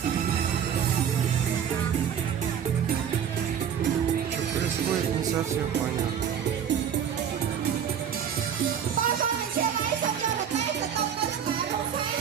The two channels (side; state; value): left; quieter; 8.5 dB